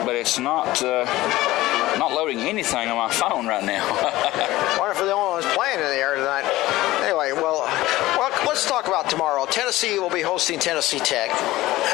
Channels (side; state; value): right; quieter; 17.3 dB